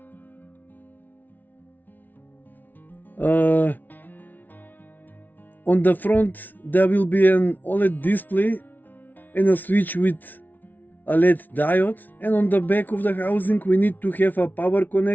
On the front there will be an OLED display and a switch with a LED diode, and on the back of the housing we need to have a power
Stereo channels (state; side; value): late; right; 0.083 ms